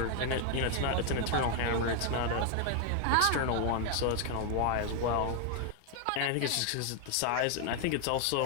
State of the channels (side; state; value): both; different; correlation 0.00